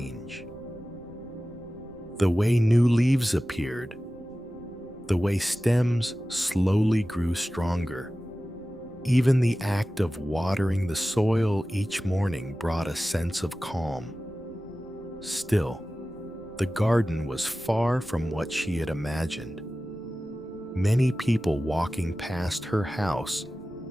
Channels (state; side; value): normal; both; correlation 0.95